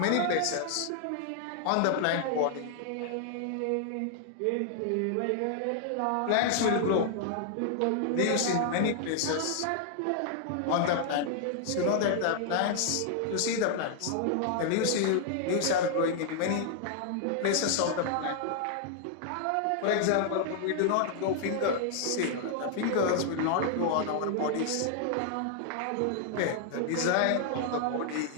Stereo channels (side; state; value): both; different; correlation 0.00